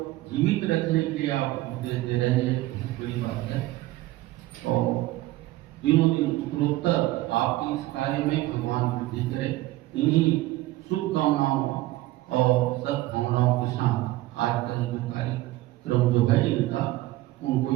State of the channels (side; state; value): left; quieter; 17.4 dB